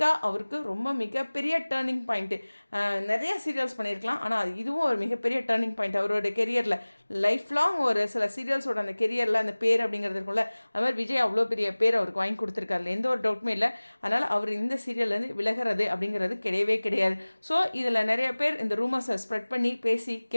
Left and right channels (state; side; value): inverted; both; correlation -1.00